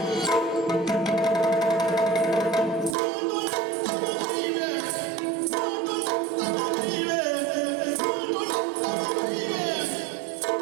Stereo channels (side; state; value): left; drops out; at 3.0 s